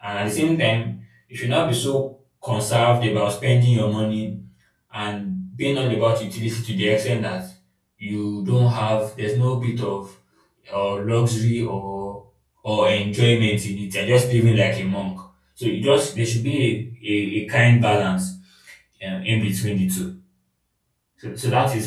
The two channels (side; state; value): both; identical; correlation 1.00